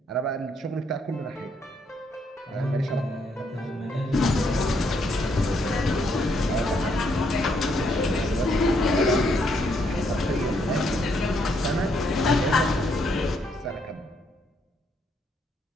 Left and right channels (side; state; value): both; normal; correlation 0.73